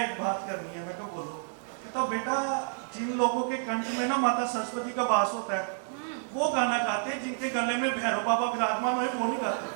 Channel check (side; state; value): left; silent; digital silence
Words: एक बात करनी है। मैं क्या बोलो? कहता बेटा जिन लोगों के कंठ में ना माता सरस्वती का वास होता है वो गाना गाते हैं, जिनके गले में भैरव बाबा विराजमान है वो भी गाते